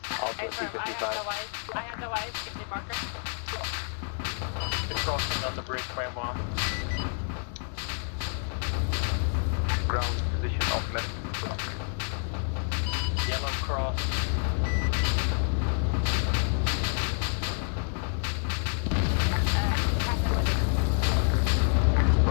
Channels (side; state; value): right; silent; 59 dB below the other